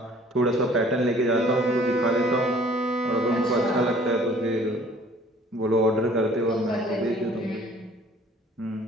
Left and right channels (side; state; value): both; normal; correlation 0.54